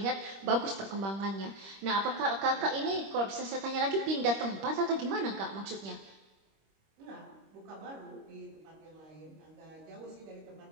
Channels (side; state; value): left; late; 26 ms